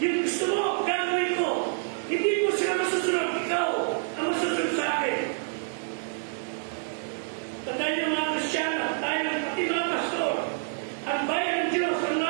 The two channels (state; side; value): silent; left; digital silence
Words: gusto mo, gagawin ko. Hindi mo sila masusunod, ikaw ang masusunod sa akin. Tandaan niyo mga Kristiyano, tayo pati mga pastor, ang bayan ng Diyos, ang